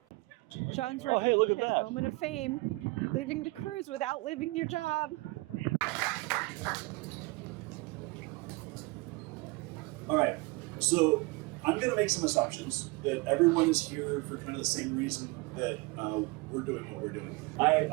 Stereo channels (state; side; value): quieter; left; 24.4 dB